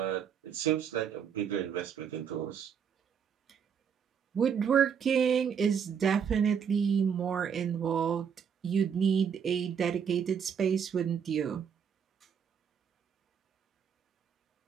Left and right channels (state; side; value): quieter; left; 7.4 dB